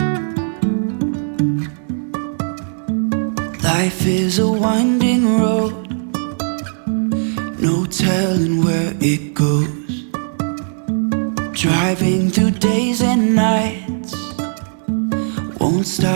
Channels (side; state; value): left; silent; digital silence